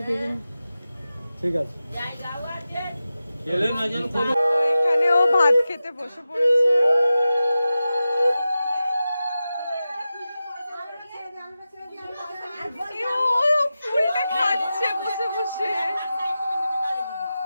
ঠিক আছে। এখানে ও ভাত খেতে বসে পড়েছে। ও ফুলটা খাচ্ছে বসে বসে।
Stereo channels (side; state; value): both; inverted; correlation -0.93